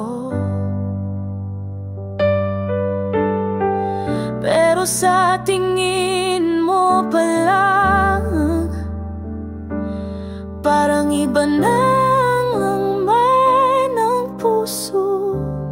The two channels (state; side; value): identical; both; correlation 1.00